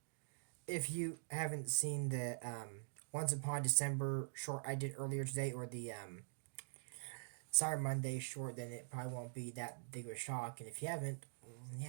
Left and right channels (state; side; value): silent; left; digital silence